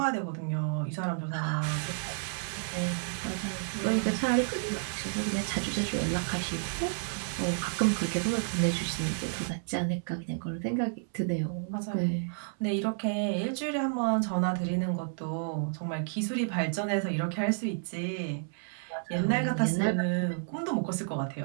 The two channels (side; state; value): left; silent; 57 dB below the other